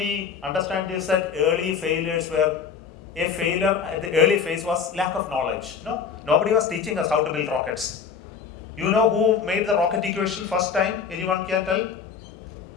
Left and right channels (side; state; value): right; quieter; 6.5 dB